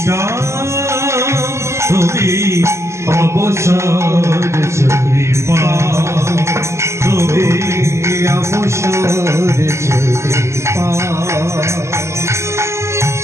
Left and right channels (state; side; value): late; left; 0.13 ms